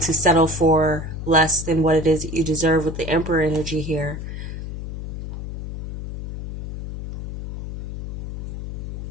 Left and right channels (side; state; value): left; noise; hum, 7 dB below the sound